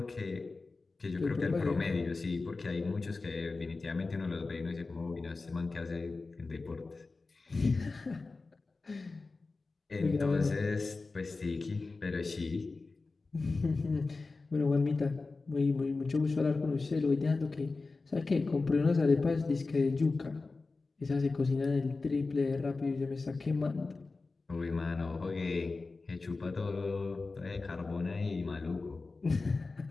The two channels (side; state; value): right; quieter; 3.8 dB